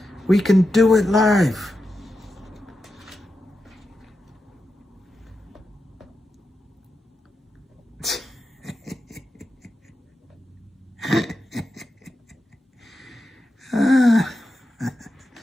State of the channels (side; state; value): both; normal; correlation 0.89